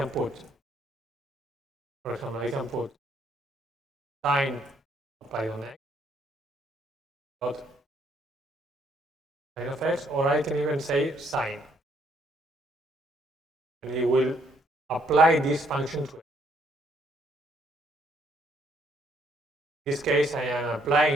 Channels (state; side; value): normal; both; correlation 0.69